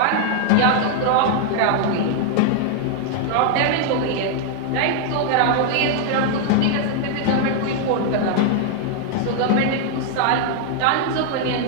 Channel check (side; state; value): both; different; correlation 0.00